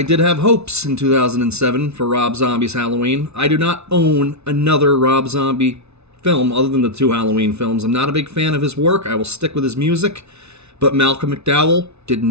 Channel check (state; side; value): late; left; 0.81 ms